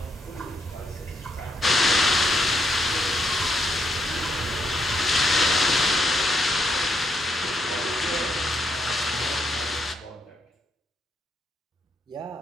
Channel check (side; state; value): both; normal; correlation 0.76